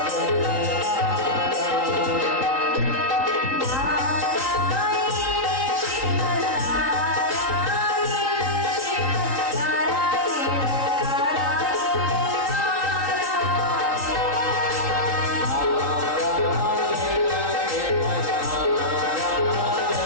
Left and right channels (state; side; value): late; left; 3.8 ms